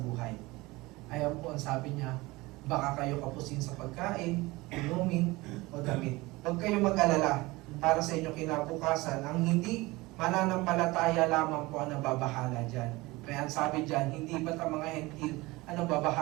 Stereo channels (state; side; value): quieter; left; 21.5 dB